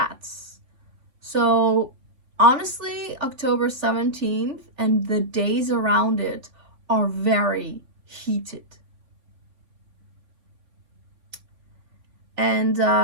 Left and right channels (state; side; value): late; left; 3.5 ms